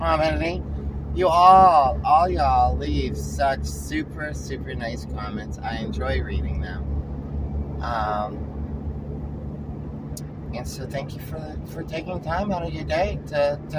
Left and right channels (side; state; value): both; identical; correlation 1.00